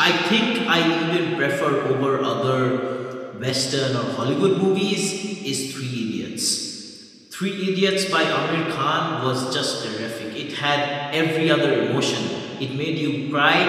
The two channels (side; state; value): both; identical; correlation 1.00